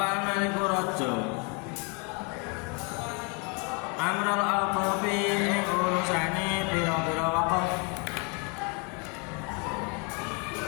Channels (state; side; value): quieter; right; 33.9 dB